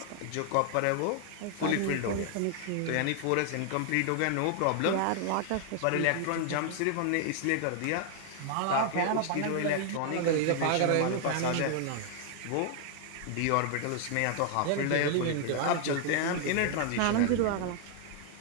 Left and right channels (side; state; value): both; different; correlation 0.00